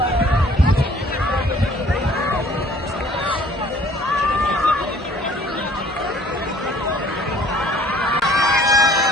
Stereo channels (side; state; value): both; normal; correlation 0.56